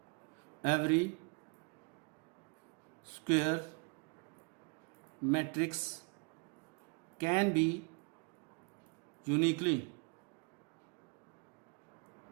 matrix can be uniquely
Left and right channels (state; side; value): quieter; left; 34.3 dB